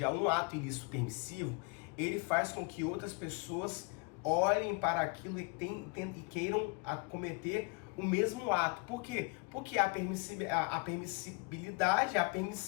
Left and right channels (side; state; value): right; quieter; 30.5 dB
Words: ato ilícito permissivo, ele faz com que outras pessoas olhem para aquilo e queiram cometer o mesmo ato. Por quê? Porque a permissibilidade, a